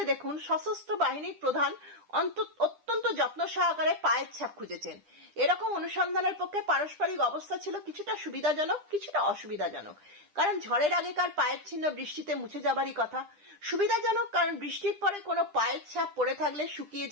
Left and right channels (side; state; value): left; late; 10 ms